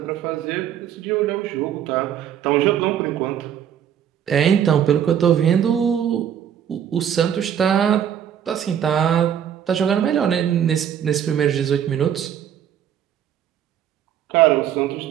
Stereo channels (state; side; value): quieter; left; 9.4 dB